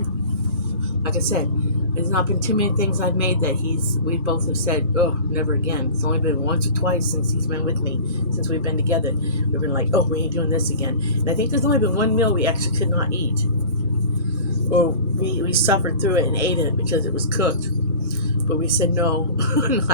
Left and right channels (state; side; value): inverted; both; correlation -0.39